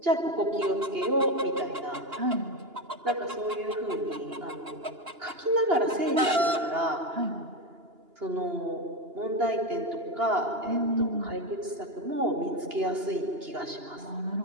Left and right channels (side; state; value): left; late; 2.9 ms